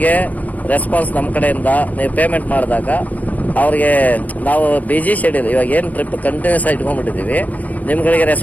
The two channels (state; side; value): late; right; 0.077 ms